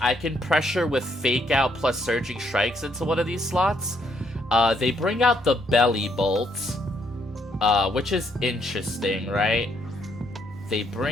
can pressure with Fake Out plus Surging Strikes into one of these slots. They bring out the Belly Bolt, which is interesting, right? They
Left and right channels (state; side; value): normal; both; correlation 0.72